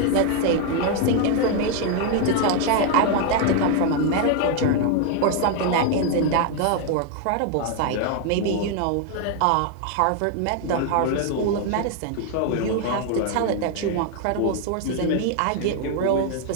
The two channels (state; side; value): different; both; correlation 0.01